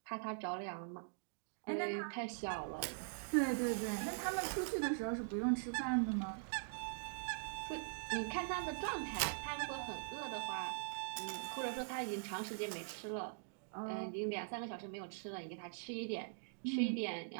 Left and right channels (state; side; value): silent; left; digital silence